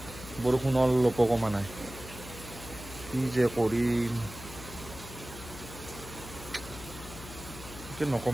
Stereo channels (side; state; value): left; noise; hum, 13 dB below the sound